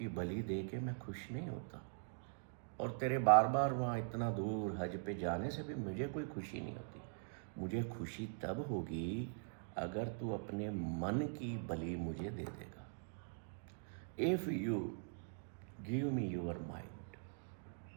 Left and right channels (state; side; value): silent; left; digital silence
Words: बलि दे के मैं खुश नहीं होता, और तेरे बार बार वहाँ इतना दूर हज पे जाने से भी मुझे कोई खुशी नहीं होती। मुझे खुशी तब होगी अगर तू अपने मन की बलि मुझे दे देगा। If you give me your mind.